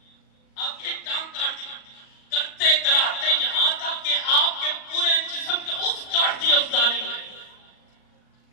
آپ کی ٹانگ کاٹ دی. کرتے کراتے یہاں تک کہ آپ کے پورے جسم کے اس کاٹ دیا اس ظالم نے،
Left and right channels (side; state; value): right; late; 38 ms